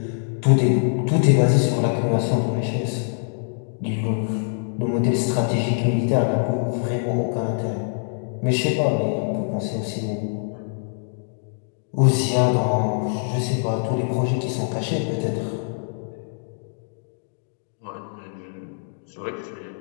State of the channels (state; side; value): silent; right; digital silence